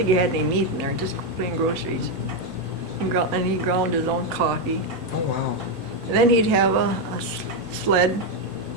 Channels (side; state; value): both; normal; correlation 0.04